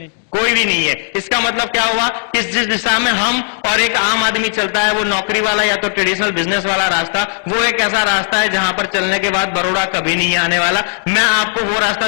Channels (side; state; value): right; silent; digital silence